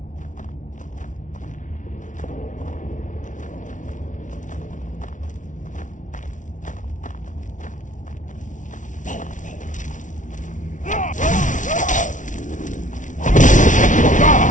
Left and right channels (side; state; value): right; late; 0.37 ms